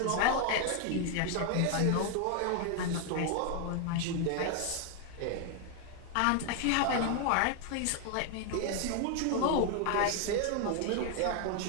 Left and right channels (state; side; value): different; both; correlation 0.01